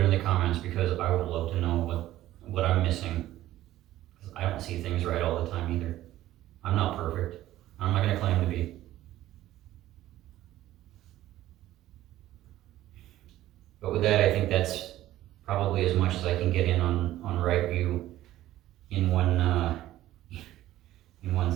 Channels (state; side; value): quieter; left; 14.5 dB